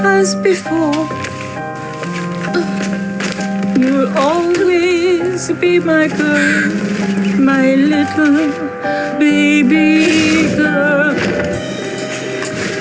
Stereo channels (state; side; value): identical; both; correlation 1.00